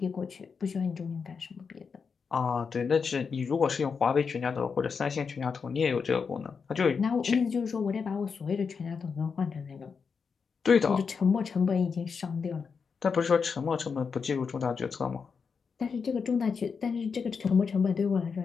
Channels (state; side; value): quieter; right; 5.7 dB